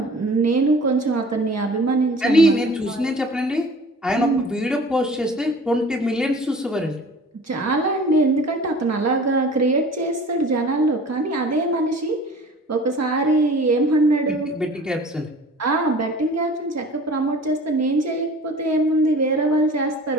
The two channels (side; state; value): both; normal; correlation 0.44